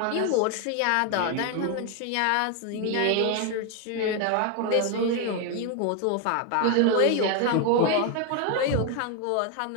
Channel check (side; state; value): both; different; correlation 0.01